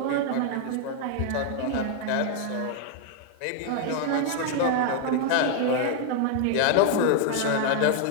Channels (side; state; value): both; different; correlation 0.00